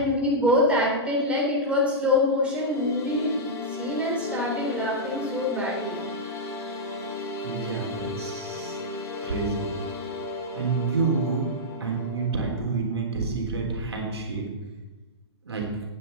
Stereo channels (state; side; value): normal; both; correlation -0.09